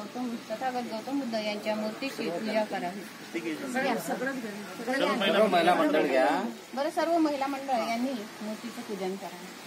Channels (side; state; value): both; identical; correlation 1.00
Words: तथागत गौतम बुद्ध यांच्या मूर्तीची पूजा करावी। बरं, सर्व महिला मंडळ यांनी मूर्तीचं पूजन करावं।